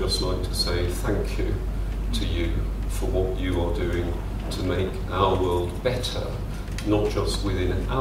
like to say thank you to you for what you are doing to make our world better, not just within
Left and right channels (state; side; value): identical; both; correlation 1.00